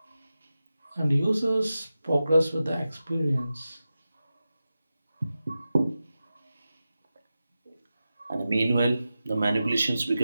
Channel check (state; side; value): inverted; both; correlation -0.93